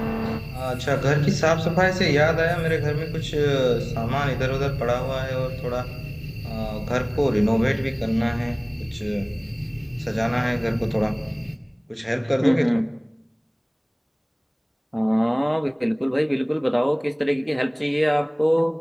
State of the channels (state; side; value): identical; both; correlation 1.00